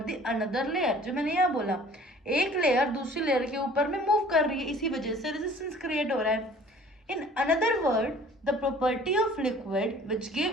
the another layer. जो मैंने यहाँ बोला, एक लेयर दूसरी लेयर के ऊपर में मूव कर रही है, इसी वजह से रेजिस्टेंस क्रिएट हो रहा है। In another word, the property of liquid which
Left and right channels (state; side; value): normal; both; correlation 0.50